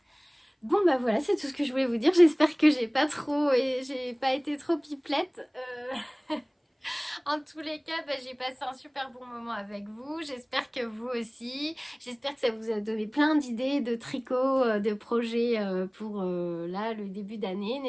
Bon voilà, c'est tout ce que je voulais vous dire. J'espère que j'ai pas été trop pipelette. En tous les cas, j'ai passé un super bon moment avec vous. J'espère que vous aussi. J'espère que ça vous a donné plein d'idées de tricot, de projets pour là, le début d'année.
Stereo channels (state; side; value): identical; both; correlation 1.00